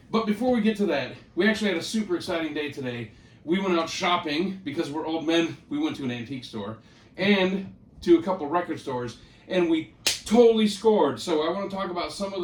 before we get to that, we actually had a super exciting day today. We went out shopping because we're old men. We went to an antique store and to a couple record stores, and we totally scored. So I want to talk about some of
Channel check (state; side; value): identical; both; correlation 1.00